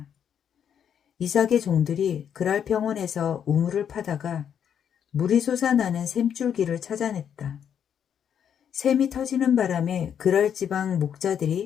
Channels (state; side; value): quieter; right; 8.5 dB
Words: 이삭의 종들이 그랄 평원에서 우물을 파다가 물이 솟아나는 샘줄기를 찾아냈다. 샘이 터지는 바람에 그랄 지방